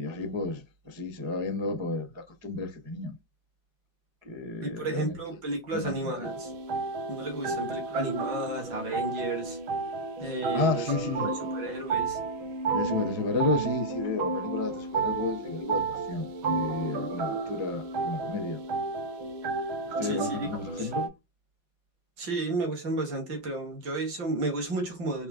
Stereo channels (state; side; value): late; left; 5.7 ms